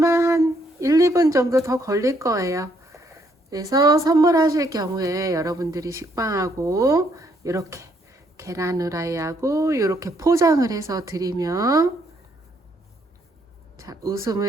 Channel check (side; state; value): both; normal; correlation 0.71